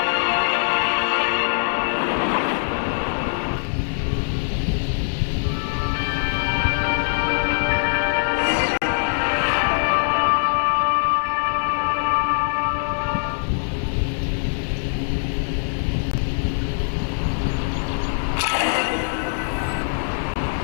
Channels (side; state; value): right; silent; digital silence